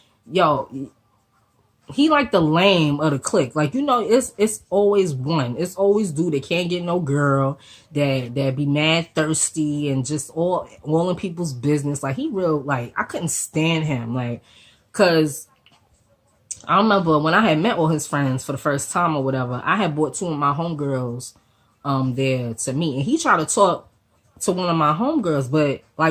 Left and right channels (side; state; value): both; identical; correlation 1.00